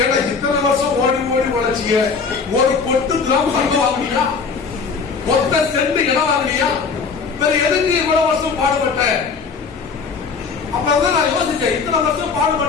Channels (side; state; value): right; quieter; 5.2 dB